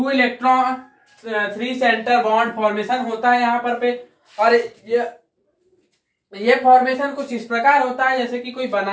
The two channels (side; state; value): both; identical; correlation 1.00